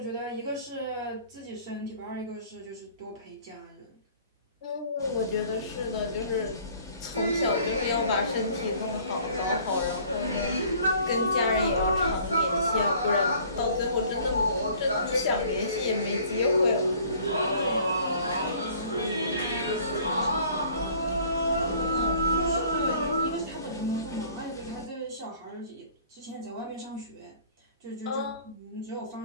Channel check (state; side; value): inverted; both; correlation -0.53